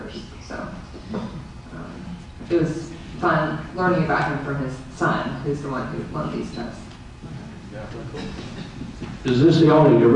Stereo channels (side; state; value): both; identical; correlation 1.00